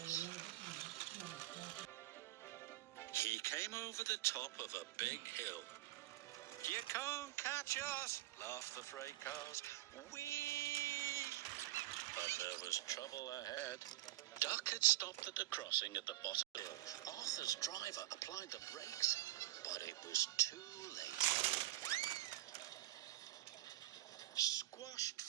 He came over the top of a big hill. You can't catch us, laughed the freight cars. Whee! But there was trouble ahead. Duck had stopped at the crossing at the bottom of the hill. Arthur's driver applied the brakes, but it was too late. Squashed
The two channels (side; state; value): left; quieter; 16.3 dB